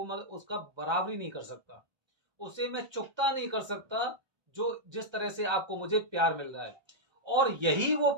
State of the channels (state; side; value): late; left; 1.3 ms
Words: उसका बराबरी नहीं कर सकता, उसे मैं चुकता नहीं कर सकता। जो जिस तरह से आपको मुझे प्यार मिल रहा है, और यही वो